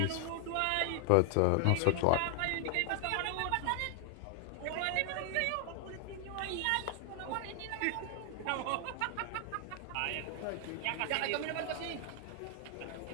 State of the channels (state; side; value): different; both; correlation 0.00